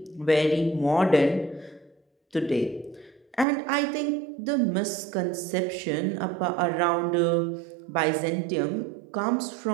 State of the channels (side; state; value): left; drops out; at 3.5 s